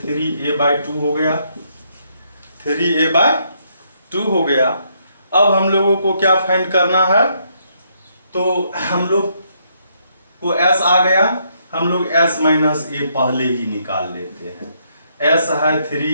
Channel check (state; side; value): inverted; both; correlation -0.73